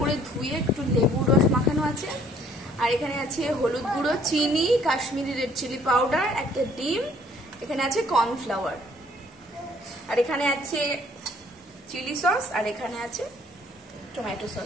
করে ধুয়ে একটু লেবুর রস মাখানো আছে। আর এখানে আছে হলুদ গুঁড়ো, চিনি, কাশ্মীরি রেড চিলি পাউডার, একটা ডিম, এখানে আছে কর্নফ্লাওয়ার, আর এখানে আছে চিলি সস, আর এখানে আছে টমেটো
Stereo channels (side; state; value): both; normal; correlation 0.60